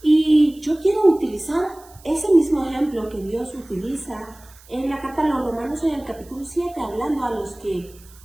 Y yo quiero utilizar ese mismo ejemplo que Dios utiliza en la carta a los Romanos en el capítulo 7, hablando a los que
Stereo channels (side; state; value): right; noise; hiss, 25 dB below the sound